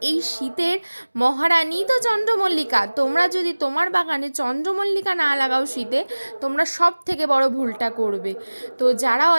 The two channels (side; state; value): both; inverted; correlation -1.00